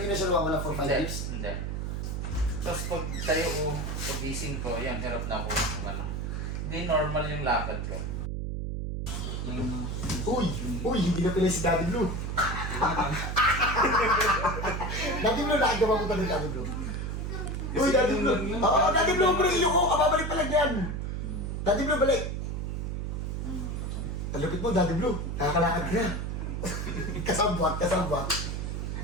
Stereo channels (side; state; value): right; noise; hum, 3 dB below the sound